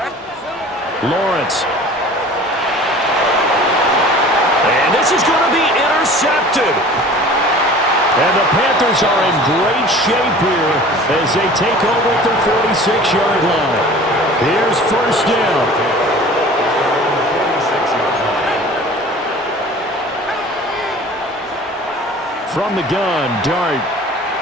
Lawrence. And this is going to be intercepted. And the Panthers are in great shape here as they take over at their 46-yard line. Here's first down. From the gun, Dart.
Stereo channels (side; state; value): both; normal; correlation 0.44